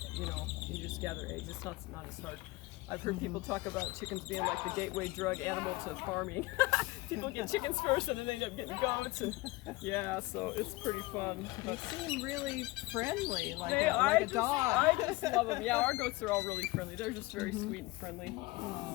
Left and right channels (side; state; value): right; quieter; 21.4 dB